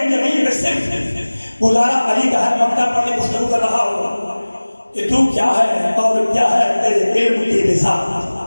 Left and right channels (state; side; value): inverted; both; correlation -1.00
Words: جبی پہ صرف گزارا علی کا ہے۔ مکتب پڑھ کے گفتگو کر رہا ہوں کہ تو کیا ہے اور کیا ہے تیرے علم کی